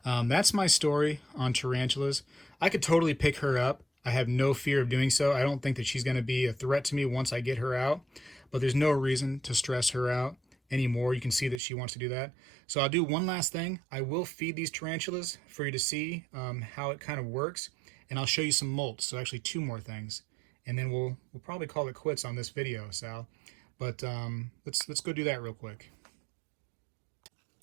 that's my story on tarantulas. I could totally pick her up. I have no fear of doing so. I don't think that she's going to be a threat to me once I get her out, but there's no reason to stress her out anymore. You can see that she wants to do that. So I'll do one last thing. I will feed these tarantulas for you to see how it kind of works, and I'll show you some molts. So actually 2 more things, and then we'll probably call it quits on this video, Sal. But let's go do that real quick.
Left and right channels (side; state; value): left; drops out; at 11.6 s